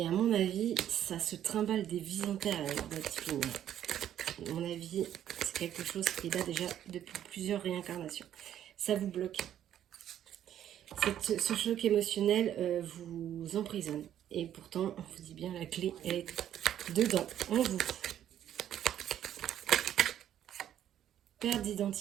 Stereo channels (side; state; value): left; quieter; 10.9 dB